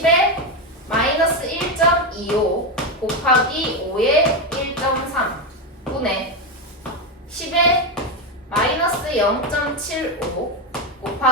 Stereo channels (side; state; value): both; normal; correlation 0.10